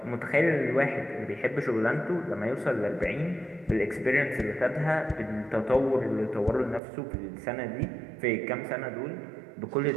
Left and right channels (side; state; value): left; drops out; at 6.8 s